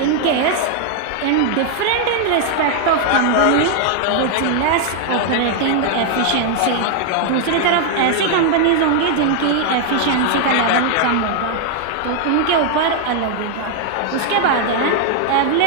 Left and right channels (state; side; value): different; both; correlation 0.00